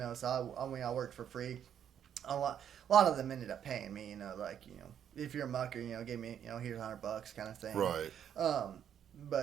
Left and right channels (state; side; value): quieter; left; 9.2 dB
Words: do, so I worked for free. A lot of them ended up paying me, if you're a mucker, give me, here's $100 kind of thing. Right.